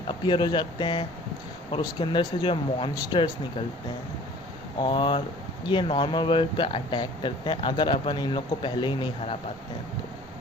अपीयर हो जाते हैं और उसके अंदर से जो है मॉन्स्टर्स निकलते हैं और ये नॉर्मल वर्ल्ड पे अटैक करते हैं अगर अपन इन लोग को पहले ही नहीं हरा पाते हैं तो।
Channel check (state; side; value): noise; right; rumble, 22 dB below the sound